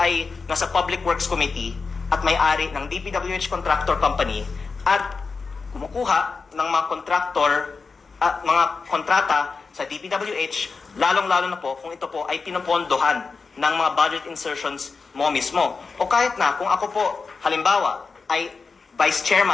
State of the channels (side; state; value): right; quieter; 4.6 dB